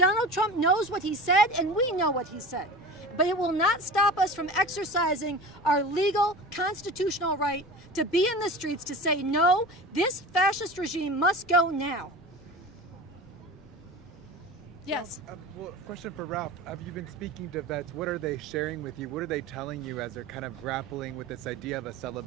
Trump knows what he said, and we know what he said. But it will not stop us from exercising our legal, constitutional right to be in the streets to say, no, this fascist regime must go now. Yes. Well, question for Ralph. Have you been speaking to vets? What are they sharing with you? What are they telling you as they're kind of grappling with this idea of a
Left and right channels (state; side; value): normal; both; correlation 0.34